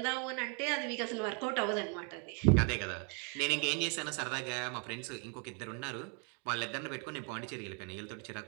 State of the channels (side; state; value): left; quieter; 37.7 dB